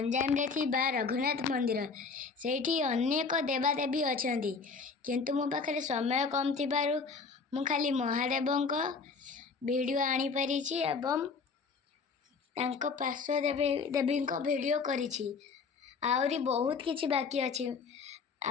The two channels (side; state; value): right; quieter; 4.9 dB